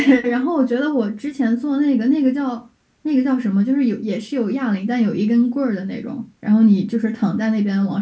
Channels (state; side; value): identical; both; correlation 1.00